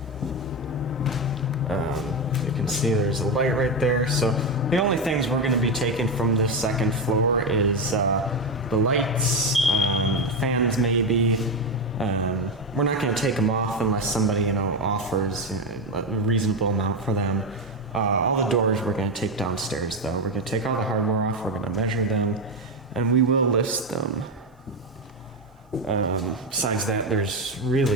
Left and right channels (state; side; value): normal; both; correlation 0.12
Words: You can see there's a light right there. So the only things we're going to be taking from this second floor is the lights, fans maybe. We're not going to take them off unless somebody, offers a reasonable amount for them. All the doors we're going to take downstairs, though. We're going to take all the hardware off, we're going to measure them, and we will list them. Besides that, there's